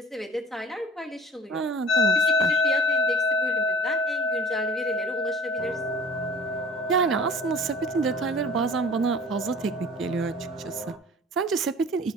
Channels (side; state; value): both; normal; correlation 0.44